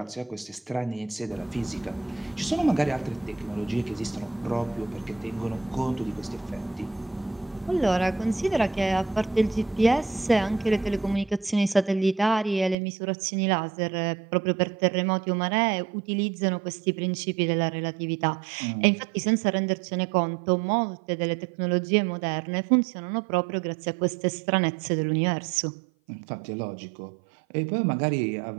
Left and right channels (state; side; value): drops out; left; at 12.8 s